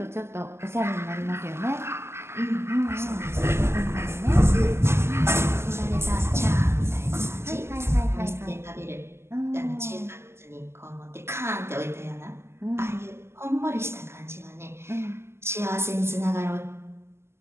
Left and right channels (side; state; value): left; late; 0.12 ms